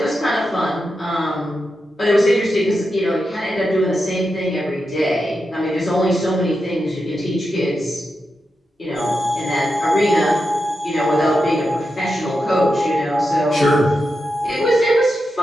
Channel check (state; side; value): normal; both; correlation 0.88